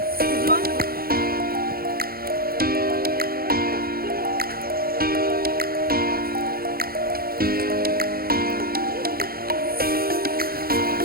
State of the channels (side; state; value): left; late; 0.44 ms